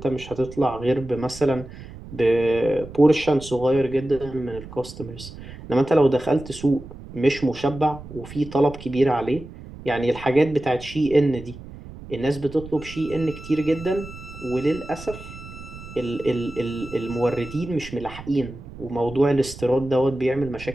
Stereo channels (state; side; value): noise; right; rumble, 15 dB below the sound